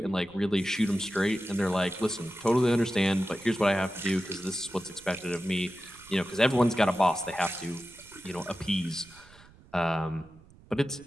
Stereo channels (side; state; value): right; noise; rumble, 25 dB below the sound